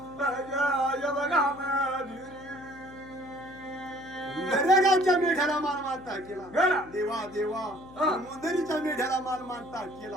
जय बघा दरेगावच्या मेढ्याला मान मानता केला. देवा देवा मुंदरीच्या मेढ्याला मान मानता केला.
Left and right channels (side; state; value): left; noise; hum, 20 dB below the sound